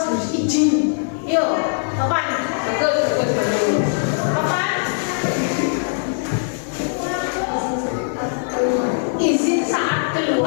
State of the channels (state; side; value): silent; right; 65 dB below the other